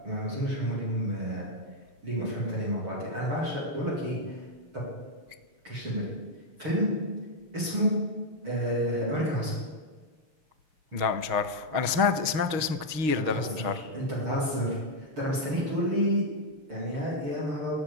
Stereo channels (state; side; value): late; left; 6.4 ms